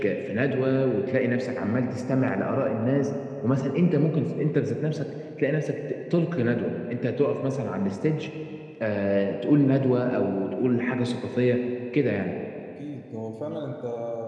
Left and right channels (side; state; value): both; identical; correlation 1.00